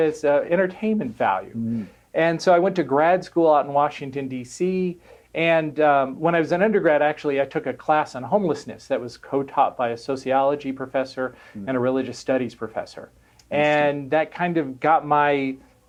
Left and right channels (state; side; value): identical; both; correlation 1.00